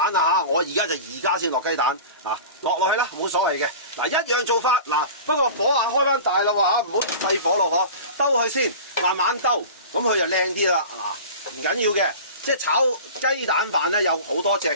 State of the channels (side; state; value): both; inverted; correlation -0.35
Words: 啦嚇。我而家先落雞蛋落去啦，冇所謂嘅。嗱，一樣做法嗱，不過火開翻大啦喎，唔好細火咯嗬，兜佢先，慢慢兜，咁佢就靚啲啦。嗱，唔緊要嘅，即係炒雞蛋飯咧有好多隻